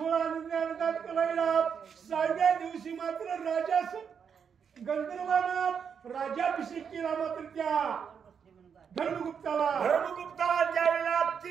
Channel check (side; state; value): left; quieter; 7.0 dB